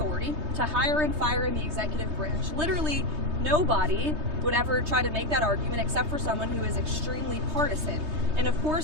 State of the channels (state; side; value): late; left; 3.2 ms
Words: to hire and fire in the executive branch. Literally, nobody would ever try to make that argument except for someone who is extremely partisan. And of